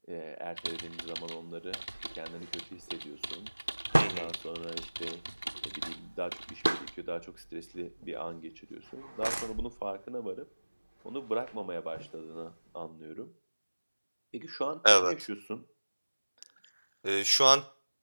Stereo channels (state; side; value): inverted; both; correlation -1.00